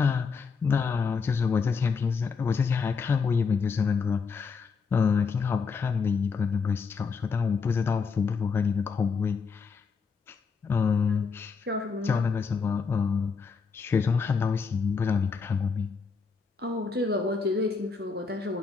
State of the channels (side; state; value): right; quieter; 5.3 dB